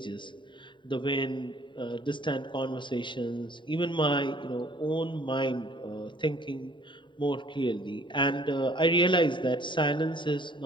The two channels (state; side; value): late; right; 0.23 ms